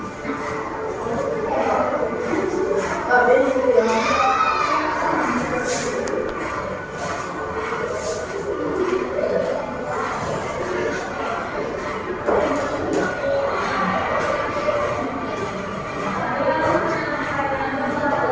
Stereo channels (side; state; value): both; identical; correlation 1.00